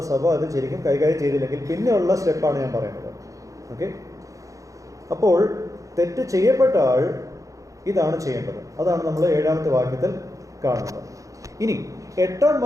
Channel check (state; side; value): late; left; 0.16 ms